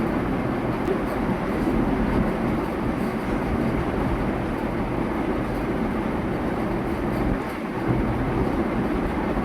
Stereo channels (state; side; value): identical; both; correlation 1.00